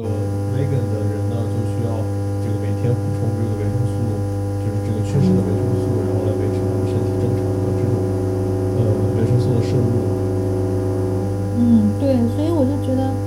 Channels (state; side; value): identical; both; correlation 1.00